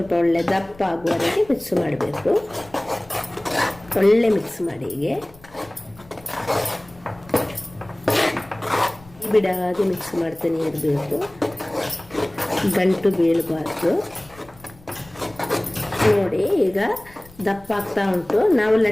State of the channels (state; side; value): noise; left; rumble, 24 dB below the sound